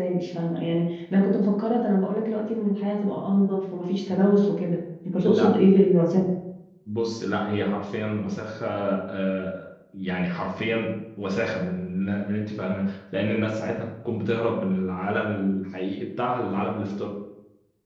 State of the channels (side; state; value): both; identical; correlation 1.00